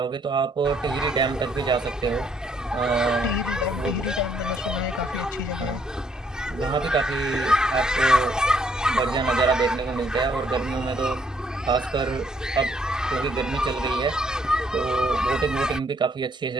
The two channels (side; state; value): both; normal; correlation 0.68